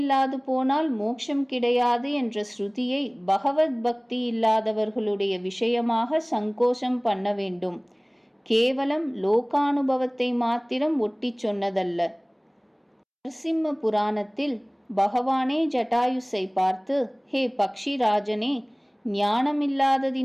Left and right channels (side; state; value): both; identical; correlation 1.00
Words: போனால் மோட்சம் கிடையாது என்ற ஸ்ருதியை பகவத் பக்தி இல்லாதவர்களுடைய விஷயமாக சங்கோஷம் பண்ண வேண்டும். கேவலம் லோகானுபவத்தை மாத்திரம் ஒட்டி சொன்னதல்ல. நரசிம்ம புராணத்தில் பகவானே ஜட்டாயுஸை பார்த்து, ஹே பக்ஷிராஜனே,